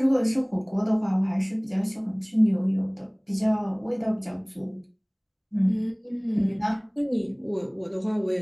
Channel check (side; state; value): both; identical; correlation 1.00